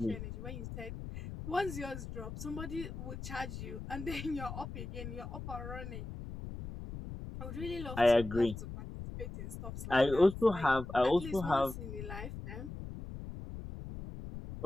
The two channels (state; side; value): noise; left; rumble, 9 dB below the sound